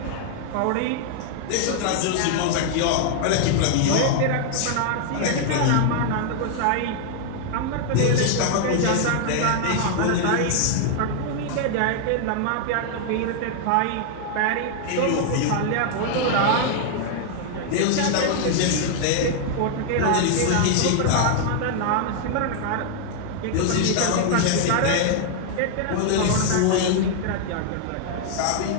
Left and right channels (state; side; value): different; both; correlation -0.01